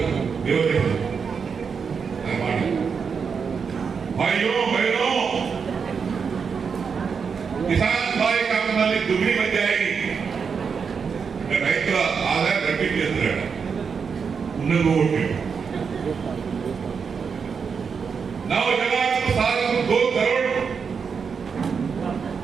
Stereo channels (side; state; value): left; quieter; 6.0 dB